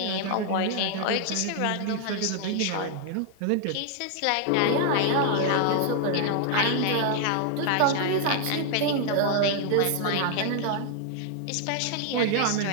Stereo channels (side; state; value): both; different; correlation 0.00